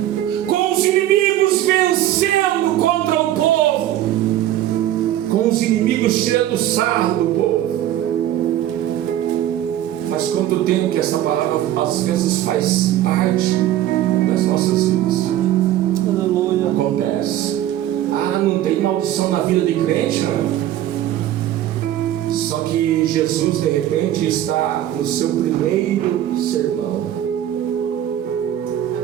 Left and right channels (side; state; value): left; quieter; 12.5 dB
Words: com os inimigos vencendo contra o povo, com os inimigos tirando sarro do povo. Faz quanto tempo que essa palavra às vezes faz parte das nossas vidas? Aleluia. Acontece. Ah, não tem maldição na vida de crente, não. Só que Jesus de repente está no seu primeiro sermão.